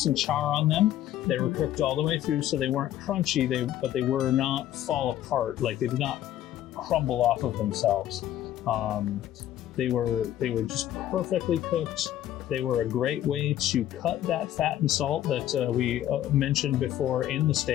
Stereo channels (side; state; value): right; quieter; 12.3 dB